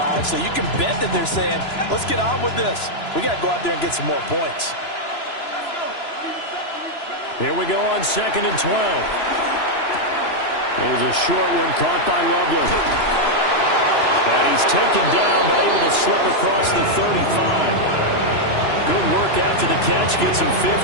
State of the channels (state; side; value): late; right; 2.9 ms